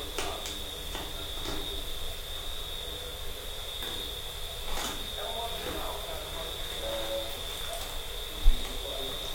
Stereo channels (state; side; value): identical; both; correlation 1.00